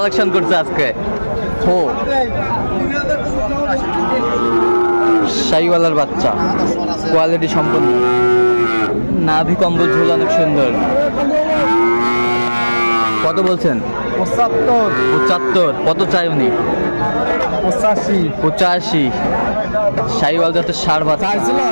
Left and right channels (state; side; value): inverted; both; correlation -1.00